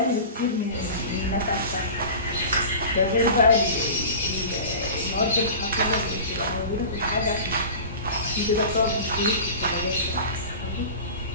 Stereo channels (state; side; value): inverted; both; correlation -0.35